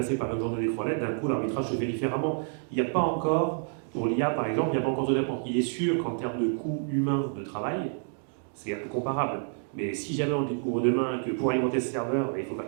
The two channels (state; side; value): silent; left; 59 dB below the other